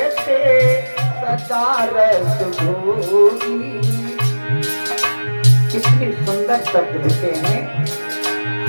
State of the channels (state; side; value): inverted; both; correlation -1.00